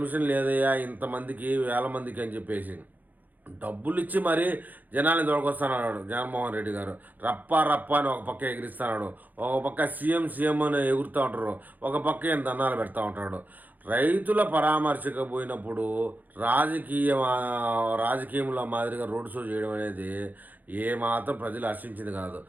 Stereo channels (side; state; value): left; late; 0.083 ms